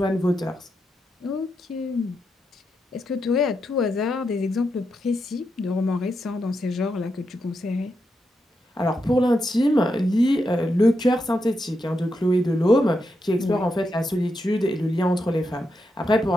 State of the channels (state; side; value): normal; both; correlation 0.84